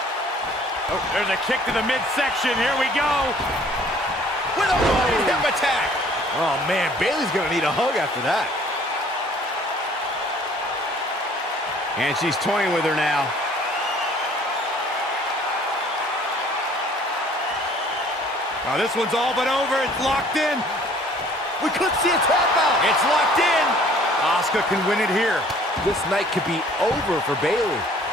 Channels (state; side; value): normal; both; correlation 0.55